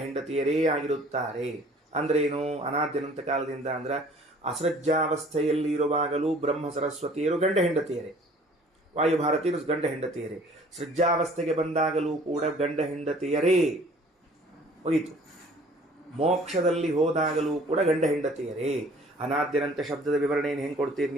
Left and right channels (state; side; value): normal; both; correlation 0.53